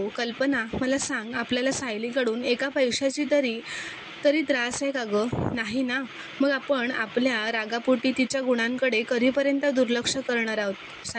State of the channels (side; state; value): both; identical; correlation 1.00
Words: कल्पना मला सांग, आपल्याला सायलीकडून एका पैशाची तरी त्रास आहे का गं? नाही ना. मग आपण आपल्या रागापोटी तिच्या गुणांकडे कधीपर्यंत दुर्लक्ष करणार आहोत?